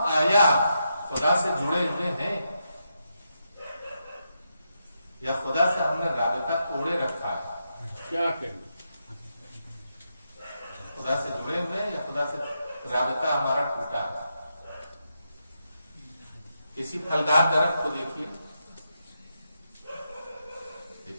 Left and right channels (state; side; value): inverted; both; correlation -0.84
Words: آیا خدا سے جڑے ہوئے ہیں یا خدا سے ہم نے رابطہ توڑے رکھا ہے؟ کیا کریں؟ خدا سے جڑے ہوئے ہیں یا خدا سے رابطہ ہمارا ٹوٹا ہے؟ کسی پھلدار درخت کو دیکھیے.